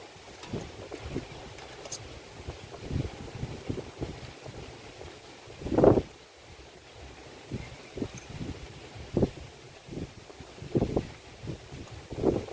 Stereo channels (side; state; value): both; identical; correlation 1.00